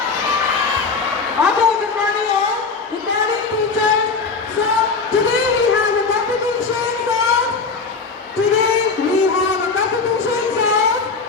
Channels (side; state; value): right; quieter; 4.6 dB